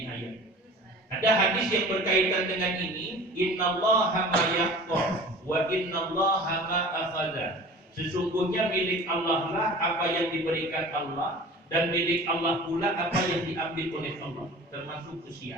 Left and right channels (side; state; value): both; normal; correlation 0.41